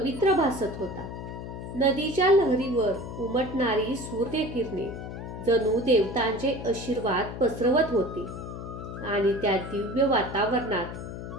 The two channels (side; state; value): left; noise; hum, 9 dB below the sound